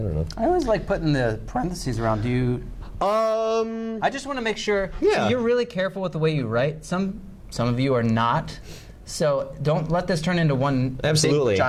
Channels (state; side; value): identical; both; correlation 1.00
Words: know. I always like putting the parentheses around. Do you? I just want to make sure. Yeah. So you're really careful with the way you write. Some of you are not. So don't let this turn into one big